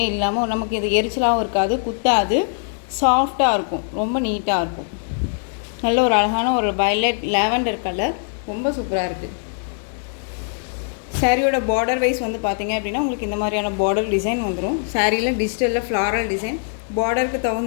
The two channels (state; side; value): silent; right; 65 dB below the other